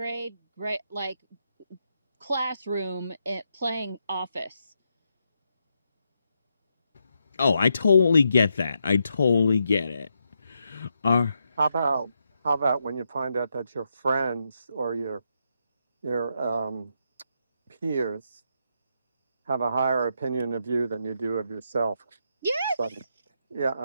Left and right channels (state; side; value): inverted; both; correlation -0.81